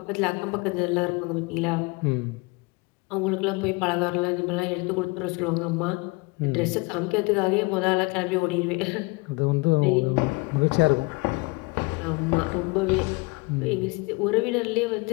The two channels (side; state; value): right; quieter; 26.7 dB